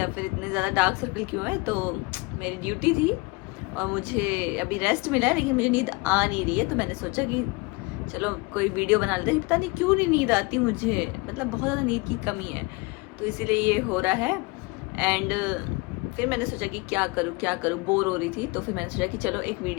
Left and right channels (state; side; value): quieter; right; 25.6 dB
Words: फिर इतने ज़्यादा डार्क सर्कल क्यों है। तो मेरी ड्यूटी थी और मुझे अभी रेस्ट मिला है, लेकिन मुझे नींद आ नहीं रही है। तो मैंने सोचा कि चलो कोई वीडियो बना लेते हैं। पता नहीं क्यों नहीं नींद आती मुझे, मतलब बहुत ज़्यादा नींद की कमी है, तो इसीलिए ये हो रहा है। एंड फिर मैंने सोचा कि क्या करूँ, बोर हो रही थी। तो फिर मैंने सोचा कि चलो एक